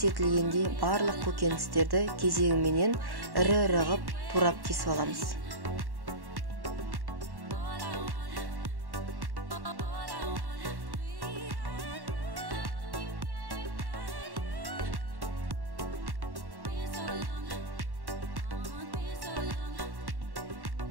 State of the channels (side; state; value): left; late; 1.1 ms